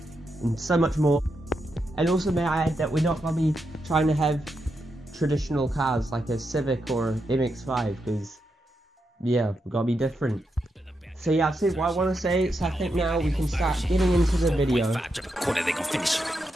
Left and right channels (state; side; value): normal; both; correlation 0.84